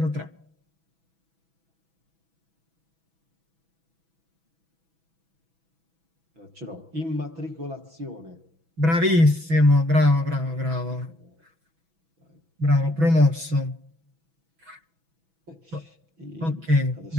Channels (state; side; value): late; left; 6.1 ms